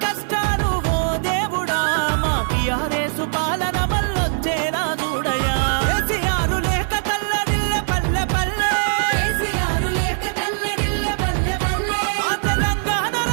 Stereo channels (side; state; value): left; silent; digital silence